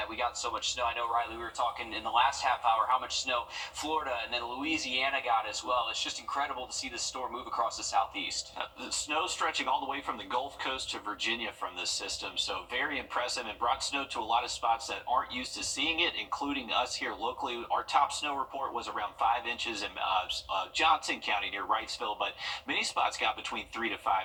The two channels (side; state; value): both; identical; correlation 1.00